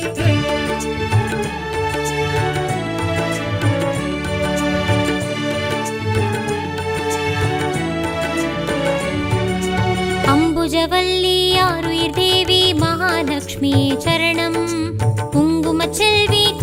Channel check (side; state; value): both; identical; correlation 1.00